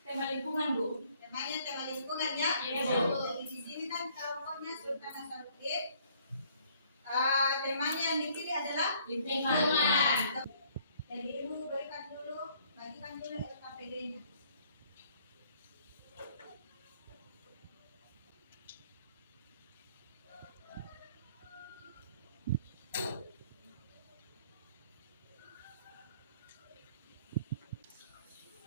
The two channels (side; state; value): both; inverted; correlation -0.62